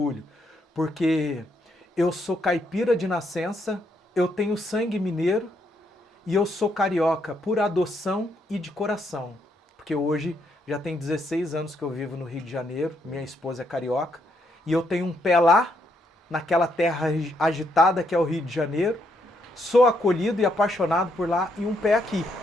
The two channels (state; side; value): normal; both; correlation 0.75